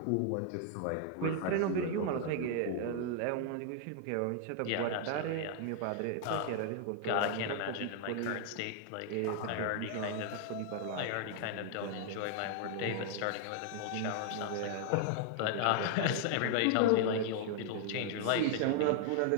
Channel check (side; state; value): both; different; correlation 0.00